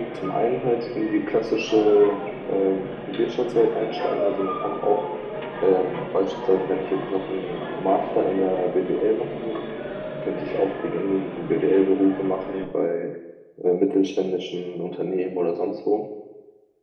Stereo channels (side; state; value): both; identical; correlation 1.00